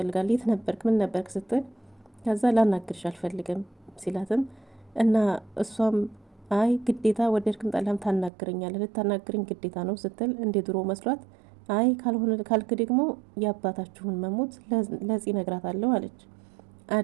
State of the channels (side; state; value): left; drops out; at 8.3 s